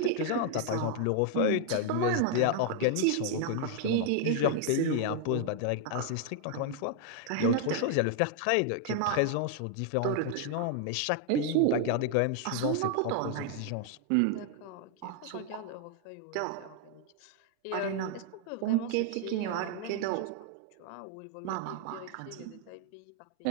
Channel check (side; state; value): both; different; correlation 0.00